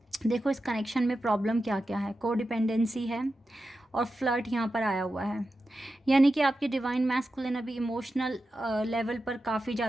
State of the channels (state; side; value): normal; both; correlation 0.91